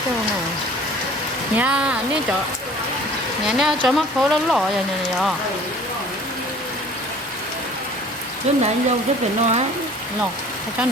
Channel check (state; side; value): normal; both; correlation 0.48